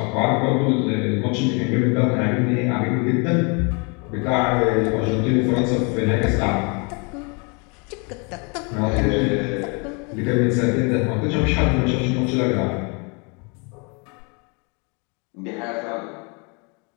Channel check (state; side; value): quieter; right; 32.9 dB